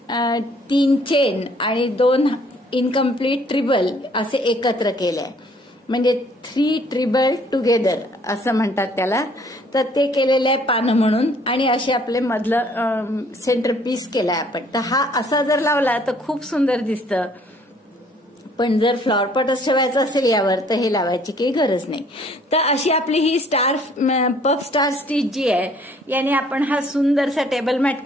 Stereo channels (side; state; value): both; normal; correlation 0.60